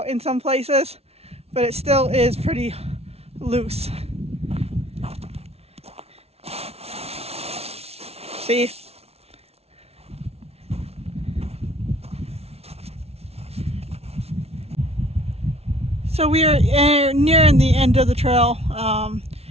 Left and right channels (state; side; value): late; left; 0.30 ms